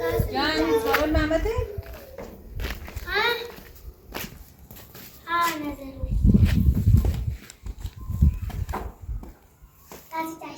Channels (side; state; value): both; identical; correlation 1.00